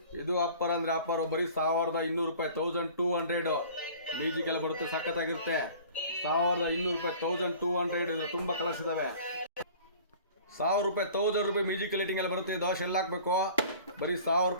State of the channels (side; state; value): both; inverted; correlation -0.46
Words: ಇದು ಆಫರ್ ಅಂದ್ರೆ ಆಫರ್ ಬರೀ 1200 ರೂಪಾಯಿ. 1200 ಮ್ಯೂಸಿಕ್ ಎಲ್ಲ ಬರುತ್ತೆ. ಸಖತ್ತಾಗಿರುತ್ತೆ. 1200 ರೂಪಾಯಿ 1200 ಇದು ತುಂಬಾ ಕಲರ್ಸ್ ಇದಾವೆ. 1000 ರೂಪಾಯಿ 1000 ರೂಪಾಯಿ ಮ್ಯೂಸಿಕ್ ಲೈಟಿಂಗ್ ಎಲ್ಲ ಬರುತ್ತೆ. ದೋಷ ಎಲ್ಲ ಹಾಕ್ಬೇಕು. ಬರೀ 1000